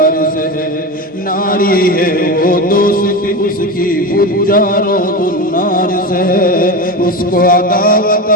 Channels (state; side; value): normal; both; correlation 0.22